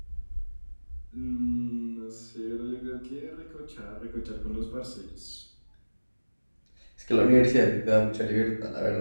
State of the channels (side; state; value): both; inverted; correlation -1.00